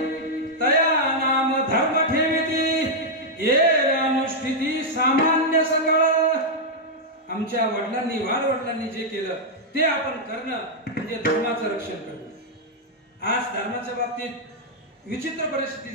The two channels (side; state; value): both; normal; correlation -0.03